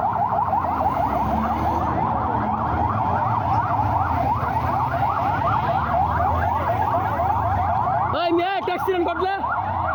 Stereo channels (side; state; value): both; identical; correlation 1.00